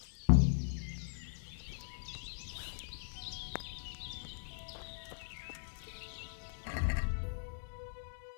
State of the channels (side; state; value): right; silent; 51 dB below the other